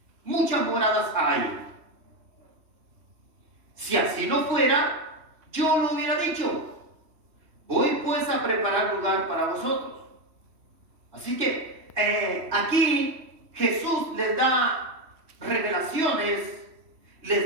muchas moradas hay. Si así no fuera, yo lo hubiera dicho. Voy pues a preparar lugar para vosotros. Así que aquí Jesús les da revelaciones,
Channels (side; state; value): left; late; 3.1 ms